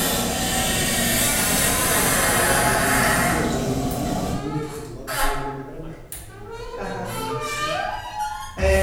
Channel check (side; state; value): both; identical; correlation 1.00